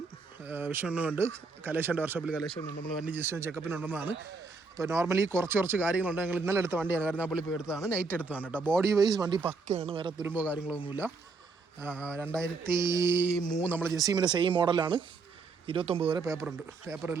വിഷ്ണുണ്ട്, കലേഷൻ്റെ വർഷോപ്പിൽ കലേഷനുണ്ട്. നമ്മൾ വണ്ടി ജസ്റ്റ് ചെക്കപ്പിനുണ്ടെന്നാണ്. അപ്പോൾ നോർമലി കുറച്ച് കാര്യങ്ങളുണ്ട്. ഞങ്ങൾ ഇന്നലെ എടുത്ത വണ്ടിയാണ്, കരുനാപ്പള്ളി പോയി എടുത്തതാണ്, നൈറ്റ് എടുത്തതാണ് കേട്ടോ. ബോഡി വൈസ് വണ്ടി പക്കയാണ്, വേറെ തുരുമ്പോ കാര്യങ്ങളൊന്നുമില്ല. 2003 നമ്മൾ ജസീമിൻ്റെ സെയിം മോഡലാണ്. 29 വരെ പേപ്പറുണ്ട്.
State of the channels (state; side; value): quieter; left; 4.2 dB